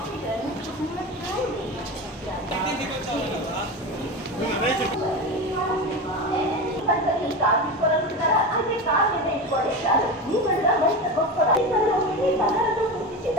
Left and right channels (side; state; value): both; normal; correlation 0.23